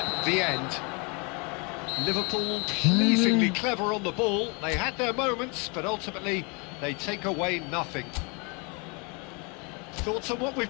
the end. Liverpool pleasingly clever on the ball. They had their moments, but ultimately they take away nothing. Thoughts on what we've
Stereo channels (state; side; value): quieter; right; 31.7 dB